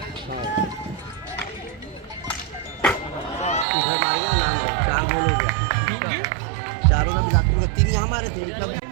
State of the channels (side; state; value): left; drops out; at 3.7 s